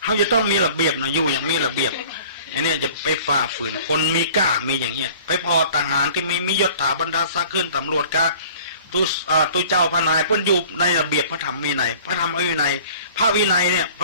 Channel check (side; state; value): both; inverted; correlation -0.48